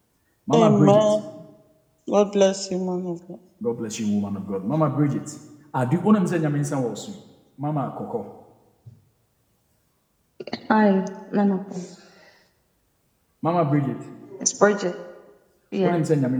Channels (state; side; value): identical; both; correlation 1.00